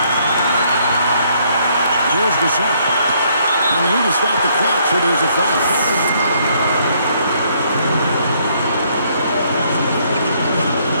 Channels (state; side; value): inverted; both; correlation -0.68